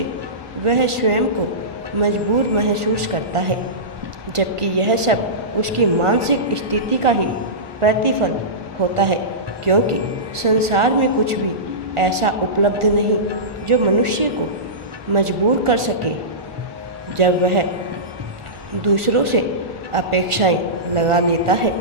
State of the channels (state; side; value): late; left; 1.4 ms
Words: वह स्वयं को मजबूर महसूस करता है, जबकि यह सब उसकी मानसिक स्थिति का ही प्रतिफल होता है। क्योंकि संसार में कुछ भी ऐसा उपलब्ध नहीं जो मनुष्य को मजबूर कर सके। जब वह दूसरों से अपेक्षाएं लगा लेता है